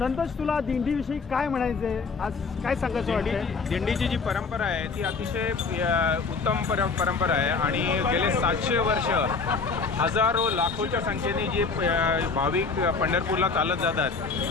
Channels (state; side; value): quieter; right; 4.7 dB